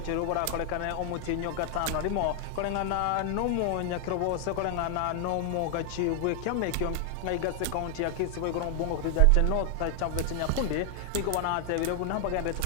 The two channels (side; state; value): both; different; correlation 0.00